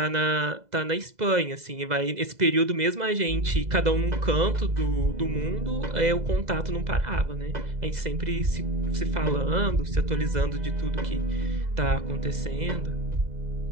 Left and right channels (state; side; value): late; left; 2.0 ms